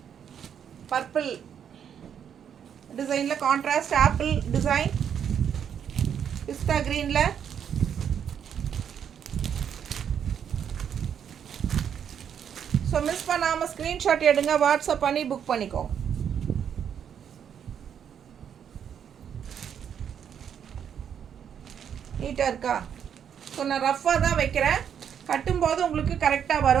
பர்பிள் டிசைனில் கான்ட்ராஸ்ட் ஆப்பிள் டிசைன். பிஸ்தா க்ரீனில் ஸோ மிஸ் பண்ணாமல் ஸ்க்ரீன்ஷாட் எடுங்க, வாட்ஸ்அப் பண்ணி புக் பண்ணிக்கோங்க. நீட்டாக இருக்கா? ஸோ நான் ரஃப்பாக தான் வைக்கிறேன். கட்டும்போது உங்களுக்கு கரெக்டாக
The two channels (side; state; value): left; quieter; 8.4 dB